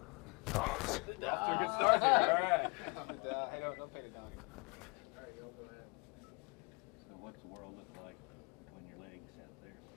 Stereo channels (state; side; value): quieter; right; 30.2 dB